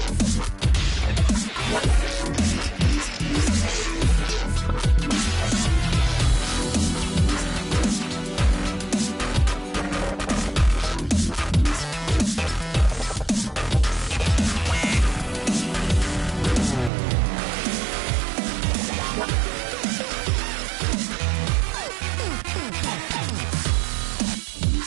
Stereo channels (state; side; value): drops out; left; at 16.9 s